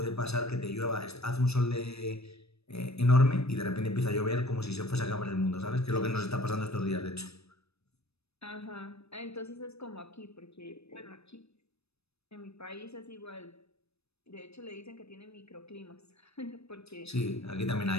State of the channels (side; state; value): right; late; 0.79 ms